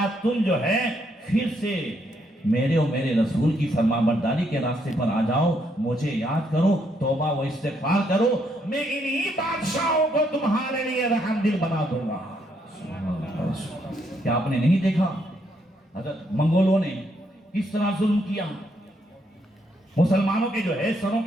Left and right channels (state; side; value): normal; both; correlation 0.74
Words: تم جو ہے پھر سے میرے اور میرے رسول کی فرمانبرداری کے راستے پر آ جاؤ، مجھے یاد کرو، توبہ و استغفار کرو، میں انہی بادشاہوں کو تمہارے لیے رحم دل بنا دوں گا۔ کیا آپ نے نہیں دیکھا حضرت منگولوں نے کس طرح ظلم کیا؟ مسلمانوں کے جو ہے سروں